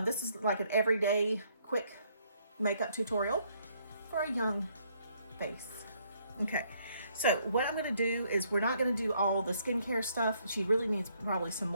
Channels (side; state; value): both; inverted; correlation -0.69